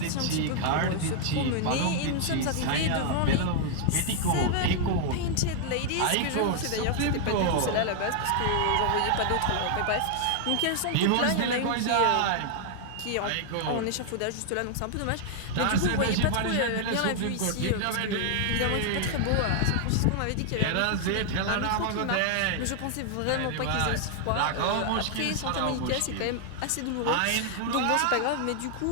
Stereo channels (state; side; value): different; both; correlation 0.00